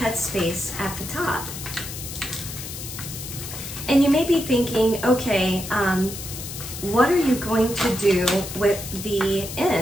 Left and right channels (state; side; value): noise; left; hiss, 9 dB below the sound